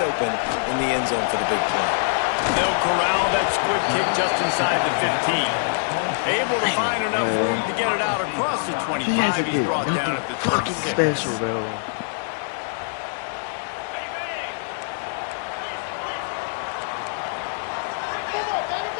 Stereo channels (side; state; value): right; silent; digital silence